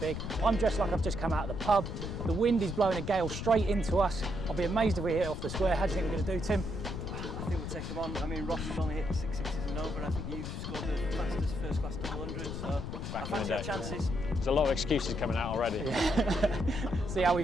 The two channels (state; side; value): noise; left; rumble, 5 dB below the sound